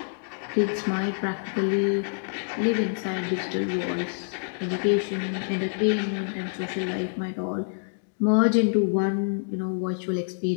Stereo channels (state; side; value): silent; right; digital silence